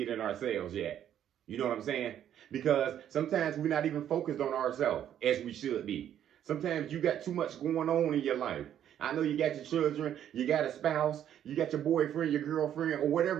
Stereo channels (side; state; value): left; quieter; 10.3 dB